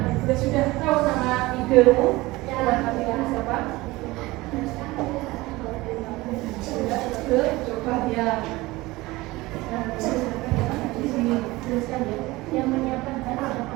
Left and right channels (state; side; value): quieter; left; 20.4 dB